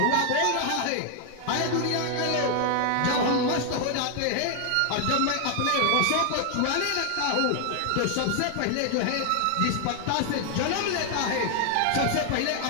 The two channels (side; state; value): both; different; correlation 0.00